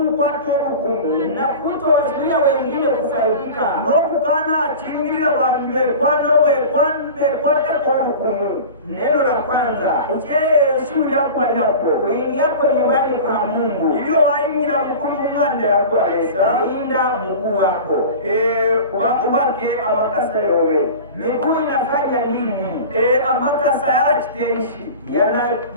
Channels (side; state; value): both; inverted; correlation -0.35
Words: obukumu na kutowazuia wengine kufaidika. n'okukana achingirira bantu bekwatako obukumu. Neno la kwanza, Eshuri yakwalirapo uingiapo nyumbani kwa Mungu, ilio wayingira mukulu mung'anda yakwalesa linda mguu wako. ubake amakasa yobe. Miguu inafanya nini? Amakasa yalachiteishi